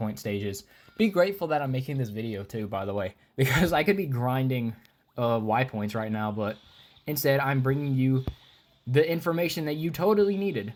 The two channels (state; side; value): identical; both; correlation 1.00